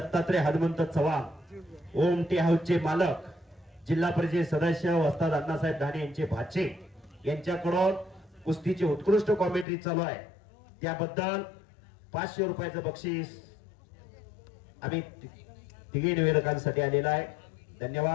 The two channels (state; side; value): drops out; right; at 9.7 s